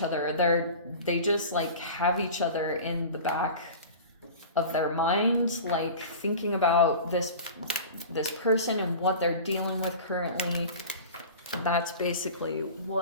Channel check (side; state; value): both; inverted; correlation -0.36